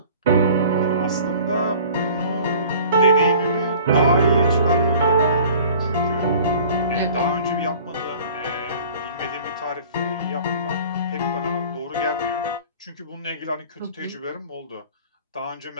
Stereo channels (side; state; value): both; inverted; correlation -0.46